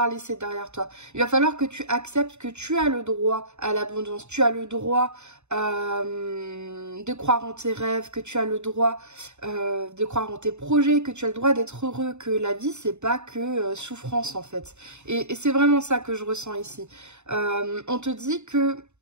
laisser derrière toi. Il va falloir que tu acceptes que tu as le droit à l'abondance, tu as le droit de croire en tes rêves, que tu as le droit de croire en tes projets, que tu as le droit d'être heureux, que la vie, c'est pas que souffrance en fait. Et c'est vraiment ça que je ressens ici. On te dit que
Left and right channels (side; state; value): left; late; 0.82 ms